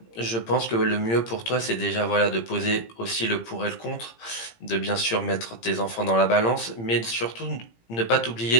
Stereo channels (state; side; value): late; right; 17 ms